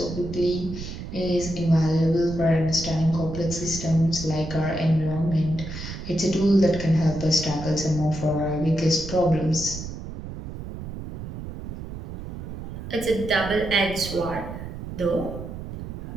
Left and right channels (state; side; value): noise; right; rumble, 9 dB below the sound